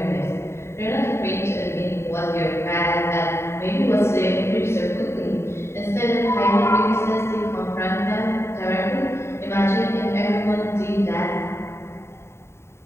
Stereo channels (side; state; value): right; late; 0.13 ms